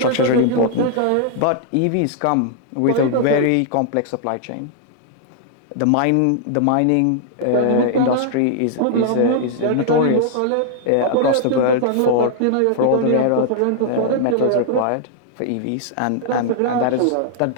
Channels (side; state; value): both; different; correlation -0.01